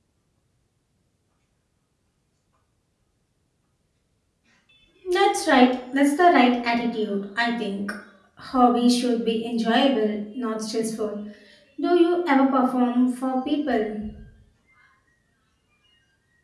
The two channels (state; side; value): identical; both; correlation 1.00